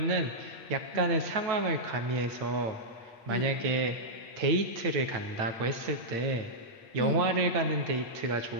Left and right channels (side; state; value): left; late; 8.6 ms